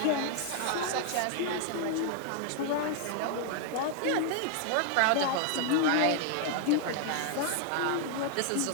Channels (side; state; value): both; different; correlation 0.00